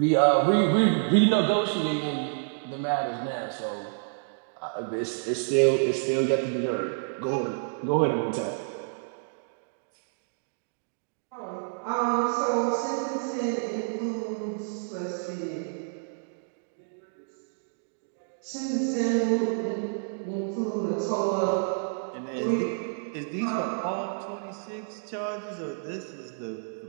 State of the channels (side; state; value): left; silent; digital silence